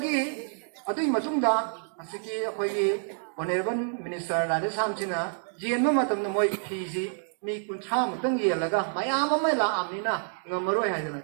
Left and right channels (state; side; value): silent; left; digital silence